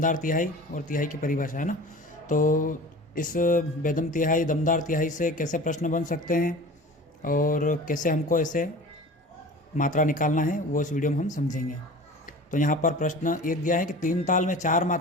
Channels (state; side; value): normal; both; correlation 0.39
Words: तिहाई और तिहाई की परिभाषा, है ना। तो इस बेदम तिहाई, दमदार तिहाई से कैसे प्रश्न बन सकते हैं और कैसे हमको ऐसे मात्रा निकालना है वो इस वीडियो में हम समझेंगे। तो यहाँ पर प्रश्न एक दिया है कि 3 ताल में 4